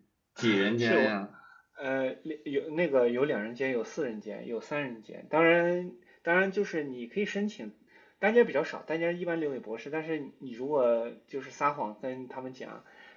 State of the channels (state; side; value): identical; both; correlation 1.00